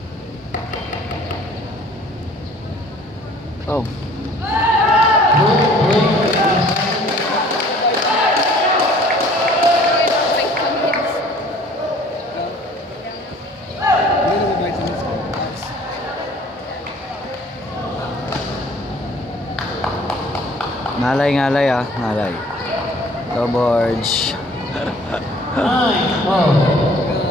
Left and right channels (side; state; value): both; normal; correlation 0.53